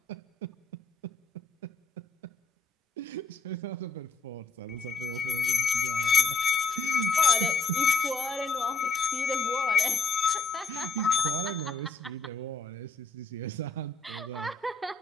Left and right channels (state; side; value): quieter; right; 4.1 dB